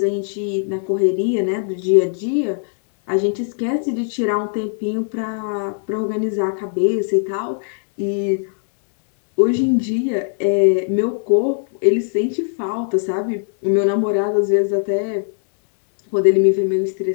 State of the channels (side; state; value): right; silent; digital silence